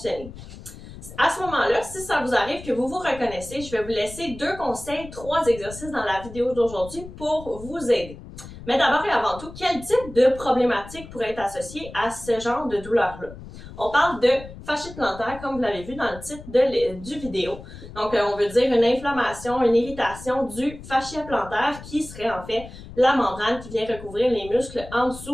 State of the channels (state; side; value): noise; left; rumble, 15 dB below the sound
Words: À ce moment-là, si ça vous arrive que vous vous reconnaissez, je vais vous laisser 2 conseils, 3 exercices dans la vidéo d'aujourd'hui pour vous aider. Mais d'abord et avant tout, quel type de problématique pourrait être associé à ce genre de douleur-là? On parle de fasciite plantaire, comme vous l'avez vu dans le titre du vidéo. Donc, on veut dire une inflammation, une irritation du fascia plantaire qui serait en fait la membrane qui vient recouvrir les muscles en